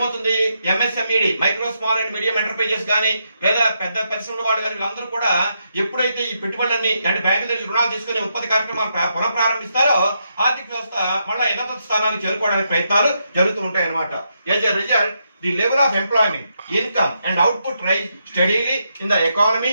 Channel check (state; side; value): inverted; both; correlation -0.81